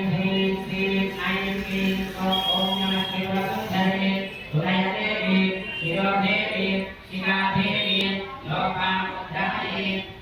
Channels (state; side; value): identical; both; correlation 1.00